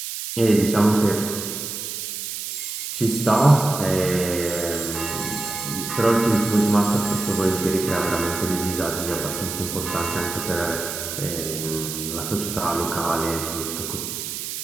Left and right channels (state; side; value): noise; right; hiss, 6 dB below the sound